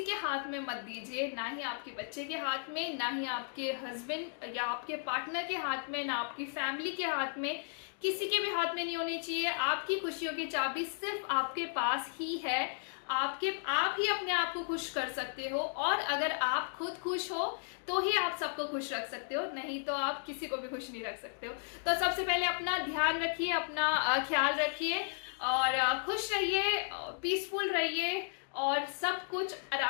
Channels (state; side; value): silent; right; digital silence